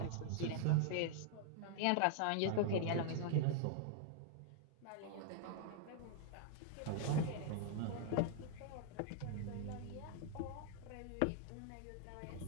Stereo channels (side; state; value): both; different; correlation -0.01